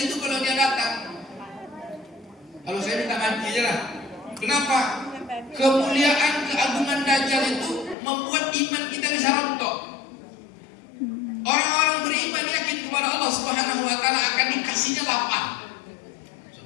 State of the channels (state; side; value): drops out; right; at 8.0 s